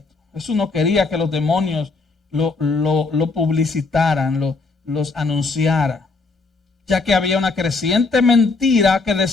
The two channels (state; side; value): quieter; right; 3.9 dB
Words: Jesús no quería que los demonios lo publicitaran, los anunciara, ya que había una creciente mentira que